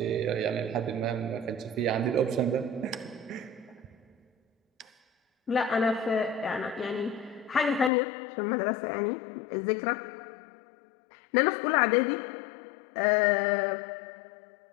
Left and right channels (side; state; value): right; drops out; at 7.9 s